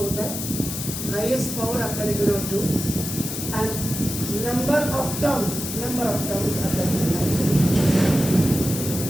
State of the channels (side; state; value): left; noise; hiss, 6 dB below the sound